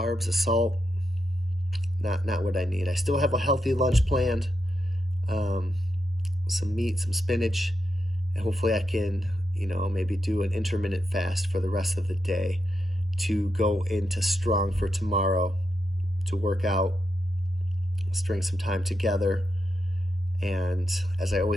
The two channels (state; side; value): normal; both; correlation 0.85